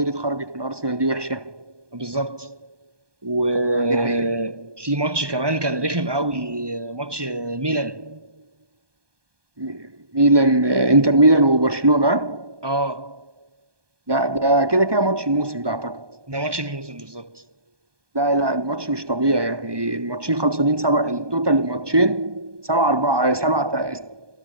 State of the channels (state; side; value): late; left; 1.2 ms